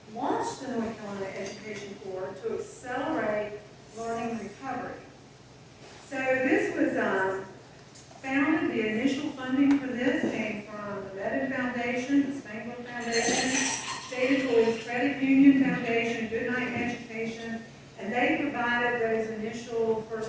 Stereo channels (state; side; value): identical; both; correlation 1.00